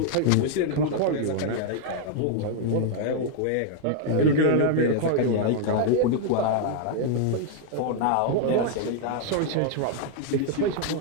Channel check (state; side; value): different; both; correlation 0.00